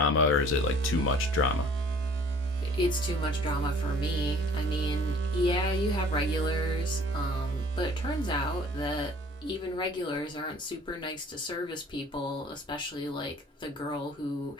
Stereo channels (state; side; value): normal; both; correlation 0.53